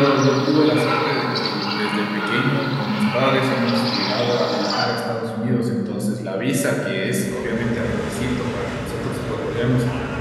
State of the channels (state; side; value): identical; both; correlation 1.00